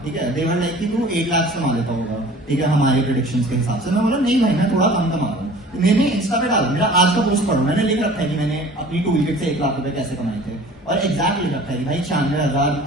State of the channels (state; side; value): normal; both; correlation 0.46